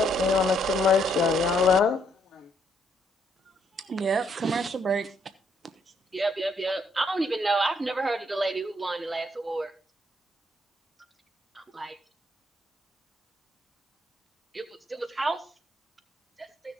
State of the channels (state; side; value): normal; both; correlation 0.72